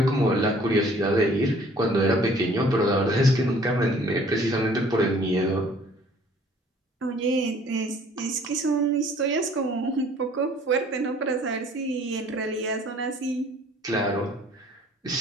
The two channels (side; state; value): both; normal; correlation 0.55